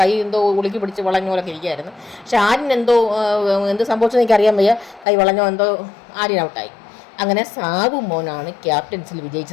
എന്തോ ഉളുക്കി പിടിച്ച് വളഞ്ഞ പോലൊക്കെ ഇരിക്കുകയായിരുന്നു. പക്ഷെ ആര്യൻ എന്ത് സംഭവിച്ചെന്ന് എനിക്കറിയാൻ വയ്യ. കൈ വളഞ്ഞോ എന്തോ ആര്യൻ ഔട്ടായി. അങ്ങനെ സാവുമോനാണ് ക്യാപ്റ്റൻസിൽ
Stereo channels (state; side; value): drops out; right; at 5.1 s